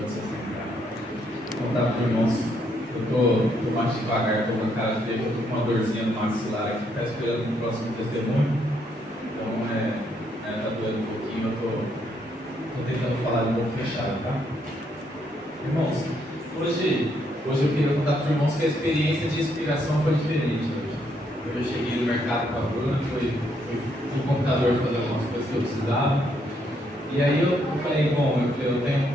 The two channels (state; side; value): normal; both; correlation 0.73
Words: Vou contar para os irmãos. Eu tô mais devagar, estou com a cara feia, eu estou com uma dorzinha no maxilar aqui, está esperando o próximo testemunho. Então, tá doendo um pouquinho, eu tô tentando falar um pouco fechado, tá? Irmãos, hoje eu queria contar para os irmãos que a experiência de inspiração foi diferente hoje. Eu cheguei no mercado com a Bruna, fui no computador fazer algumas coisas que eu precisava. E aí eu falei, eu tenho um